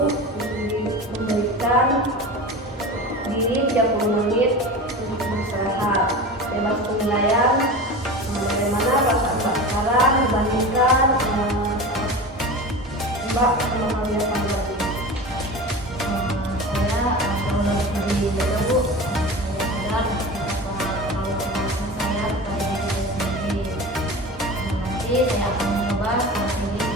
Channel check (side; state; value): both; normal; correlation 0.31